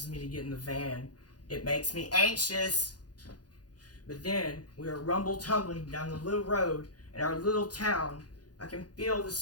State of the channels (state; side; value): late; right; 0.69 ms